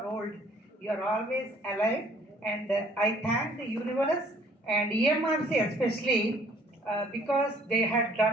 old, you're always alive. And I thank the universe and EMRC especially because they had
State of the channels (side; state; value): both; normal; correlation 0.58